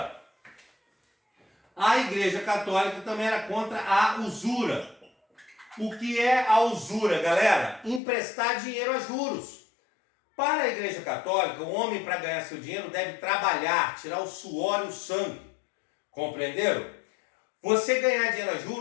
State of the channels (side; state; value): right; drops out; at 8.0 s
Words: A Igreja Católica também era contra a usura. O que é a usura, galera? Emprestar dinheiro a juros. Para a Igreja Católica, o homem para ganhar seu dinheiro deve trabalhar, tirar o suor e o sangue. Compreenderam? Você ganhar dinheiro a